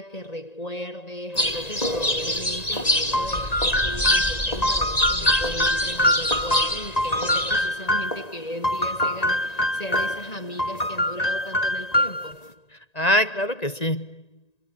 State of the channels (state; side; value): late; right; 1.9 ms